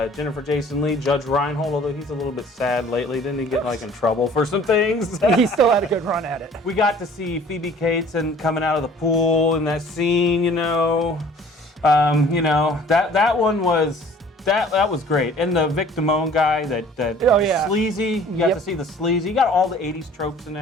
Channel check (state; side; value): normal; both; correlation 0.51